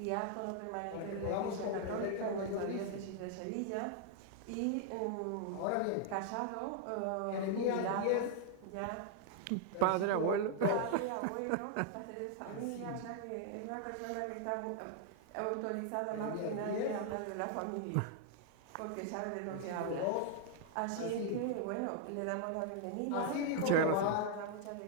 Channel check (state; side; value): different; both; correlation 0.00